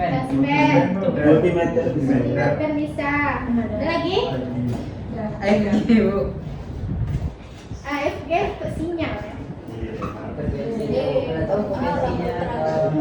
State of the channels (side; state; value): both; identical; correlation 1.00